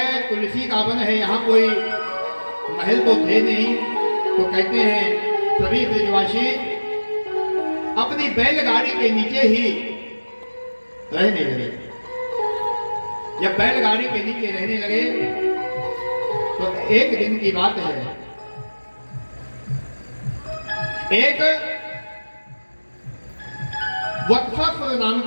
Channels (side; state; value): both; inverted; correlation -1.00